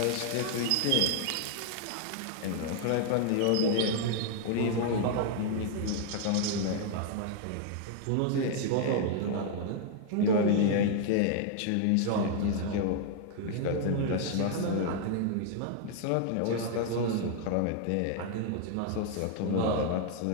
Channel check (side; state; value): both; different; correlation 0.00